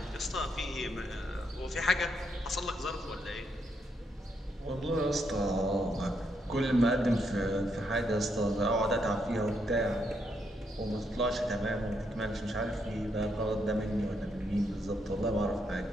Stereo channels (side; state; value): both; normal; correlation 0.78